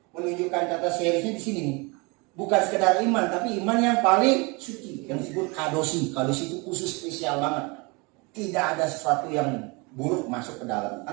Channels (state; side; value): quieter; left; 28.2 dB